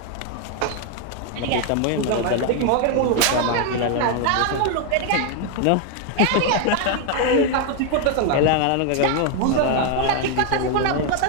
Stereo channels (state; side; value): different; both; correlation 0.00